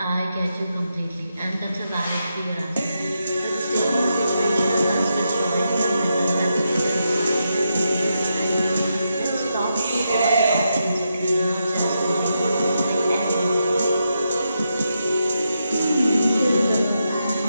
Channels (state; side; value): inverted; both; correlation -0.84